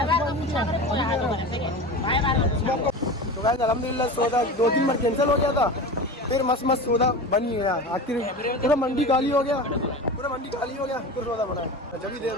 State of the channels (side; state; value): both; normal; correlation 0.30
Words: तो गाइस अल्हम्दुलिल्लाह सौदा 2-3 बार कैंसिल हो गया था, फिर मस्त मस्त सौदा बन ही गया। आखिर पूरा मंडी खाली हो गया, फिर सौदा बना है, जब ही देर